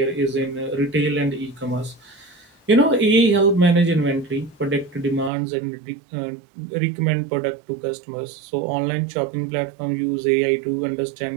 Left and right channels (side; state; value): left; drops out; at 5.3 s